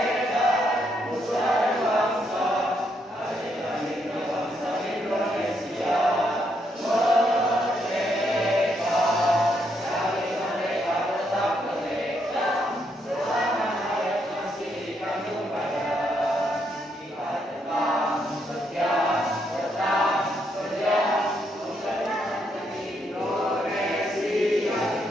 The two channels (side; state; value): both; normal; correlation 0.76